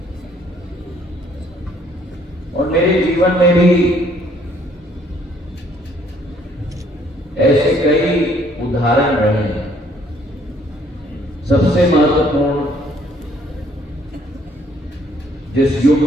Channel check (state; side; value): normal; both; correlation 0.63